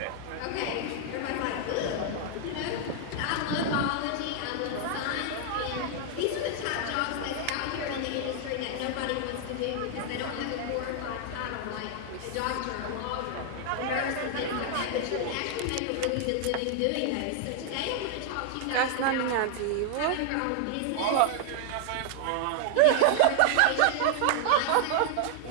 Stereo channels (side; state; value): both; different; correlation 0.00